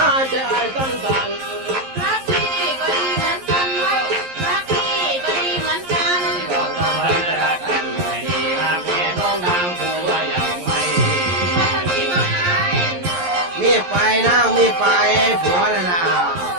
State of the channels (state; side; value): late; left; 11 ms